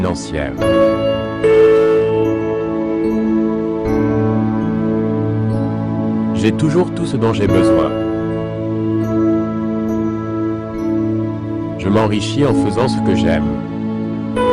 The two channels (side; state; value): both; identical; correlation 1.00